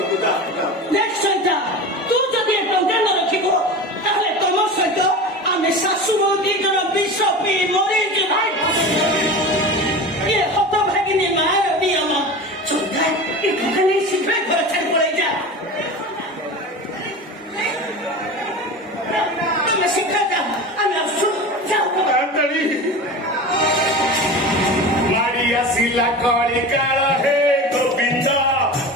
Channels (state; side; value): normal; both; correlation 0.30